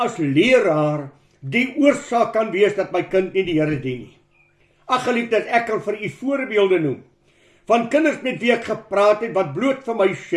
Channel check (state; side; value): identical; both; correlation 1.00